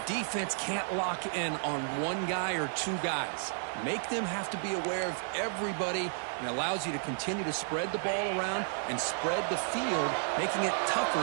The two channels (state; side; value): silent; left; 56 dB below the other